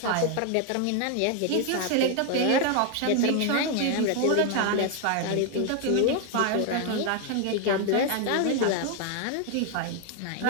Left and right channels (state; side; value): different; both; correlation 0.01